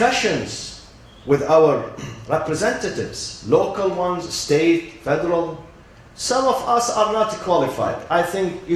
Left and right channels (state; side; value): identical; both; correlation 1.00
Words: with our representatives, local ones, state, federal. Some of us are not qualified. I think you